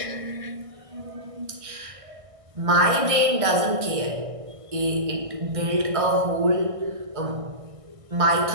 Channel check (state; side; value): late; left; 1.6 ms